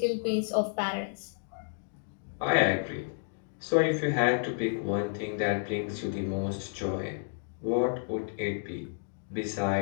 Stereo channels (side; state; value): right; silent; digital silence